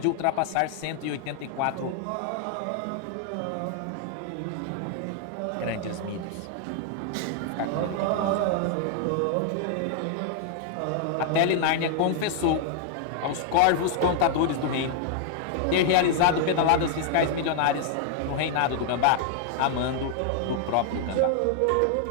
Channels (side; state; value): both; different; correlation -0.01